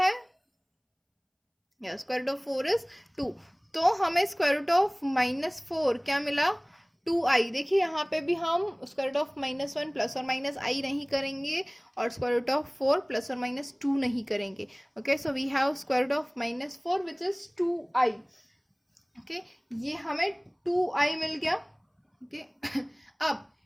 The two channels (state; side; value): identical; both; correlation 1.00